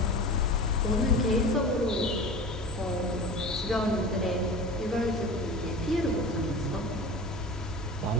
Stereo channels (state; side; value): normal; both; correlation 0.34